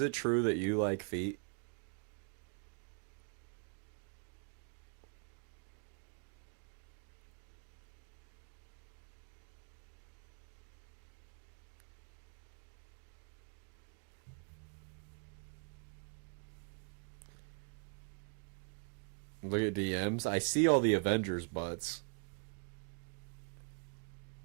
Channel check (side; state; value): left; quieter; 36.9 dB